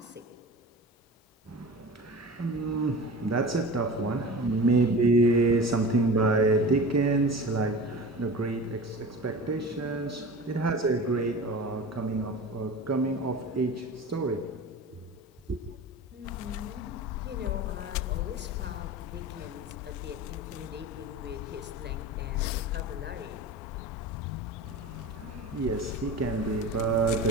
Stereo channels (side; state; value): both; normal; correlation 0.34